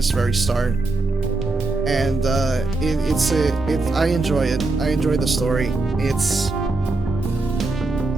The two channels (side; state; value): left; quieter; 3.2 dB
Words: very start. And I enjoy it. I enjoy the story. It's